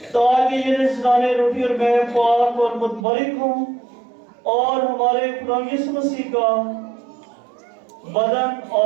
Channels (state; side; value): drops out; left; at 3.0 s